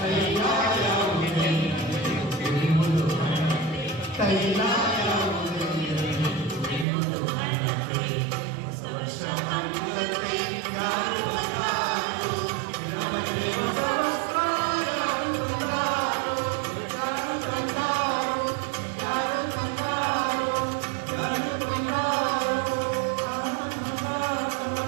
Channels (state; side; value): drops out; left; at 6.9 s